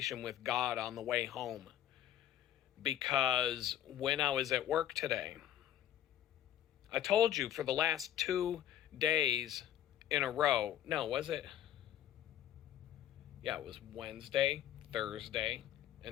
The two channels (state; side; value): quieter; right; 11.5 dB